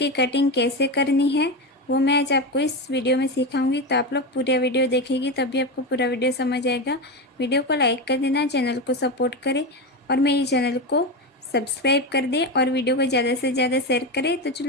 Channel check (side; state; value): both; normal; correlation 0.16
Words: कटिंग कैसे करनी है वो मैं आज आपको इस वीडियो में सिखाऊंगी। तो आप लोग पूरा वीडियो देखेंगे तभी आपको पूरा वीडियो समझ आएगा। वीडियो को लाइक कर देना, चैनल को सपोर्ट करें और मेरे चैनल को सब्सक्राइब कर दें और वीडियो को ज़्यादा से ज़्यादा शेयर करें। तो